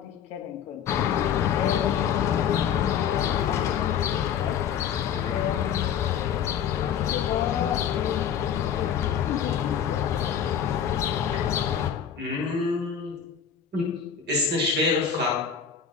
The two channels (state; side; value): quieter; right; 8.0 dB